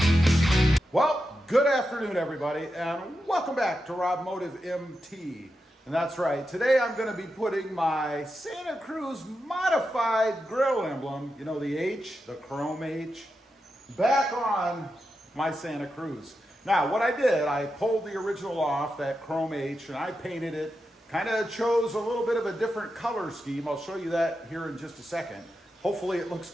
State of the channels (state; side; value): normal; both; correlation 0.88